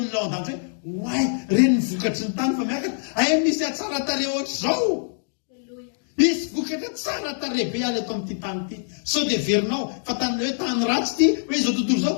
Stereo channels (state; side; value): silent; right; digital silence